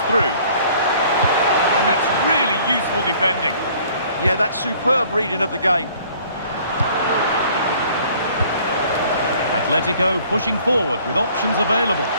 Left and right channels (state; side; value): inverted; both; correlation -0.55